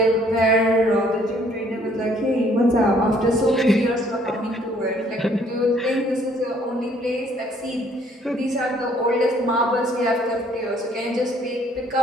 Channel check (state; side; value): normal; both; correlation 0.62